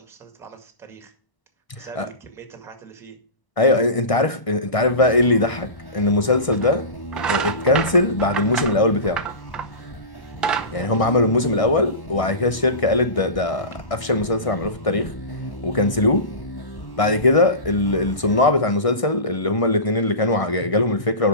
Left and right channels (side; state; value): right; late; 1.6 ms